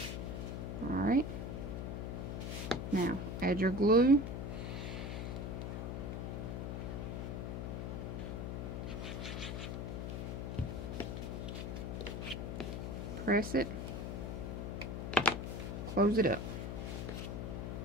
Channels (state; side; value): noise; left; hum, 4 dB below the sound